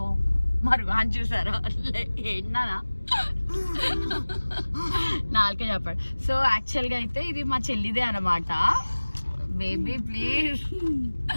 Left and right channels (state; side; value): inverted; both; correlation -1.00